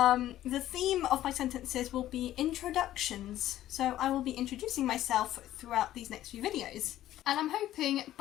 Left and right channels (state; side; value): quieter; right; 13.5 dB